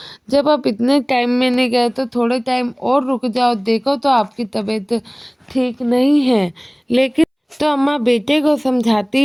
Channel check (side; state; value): both; identical; correlation 1.00